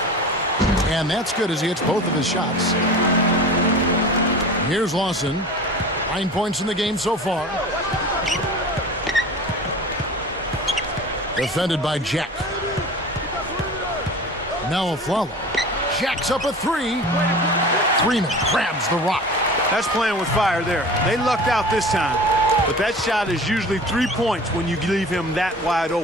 And that's good as he hits both of his shots. Here's Lawson. 9 points in the game so far. Defended by Jack. Now Afflalo. Jack's up a 3. Freeman grabs the rock. That's playing with fire there. They lucked out this time. But that shot is usually 3 points when you leave him that wide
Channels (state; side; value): normal; both; correlation 0.38